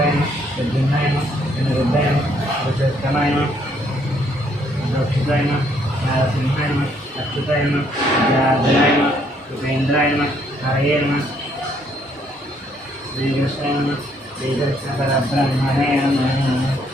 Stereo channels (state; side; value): normal; both; correlation 0.68